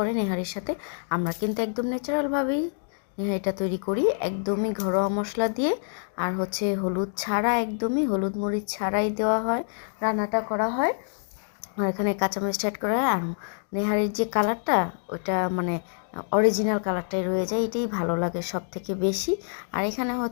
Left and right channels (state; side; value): silent; right; digital silence